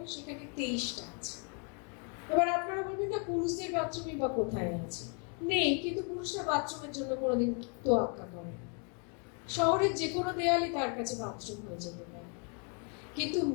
সেখানে 23টা আছে। এবার আপনারা বলবেন না পুরুষদের বাথরুমই বা কোথায় আছে? নেই, কিন্তু পুরুষরা বাথরুমের জন্য কোনোদিন তোয়াক্কা করে না। শহরের যে কোনো দেয়ালই তার কাছে বাথরুম হয়ে যেতে পারে, কিন্তু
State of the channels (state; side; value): quieter; right; 38.6 dB